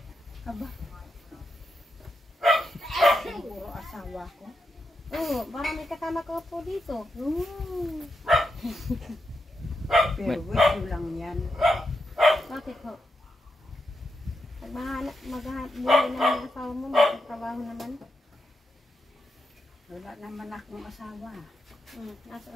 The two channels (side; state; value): both; normal; correlation 0.85